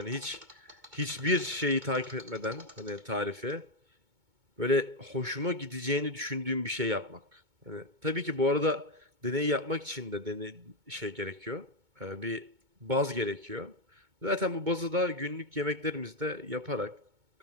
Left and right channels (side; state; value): left; late; 2.2 ms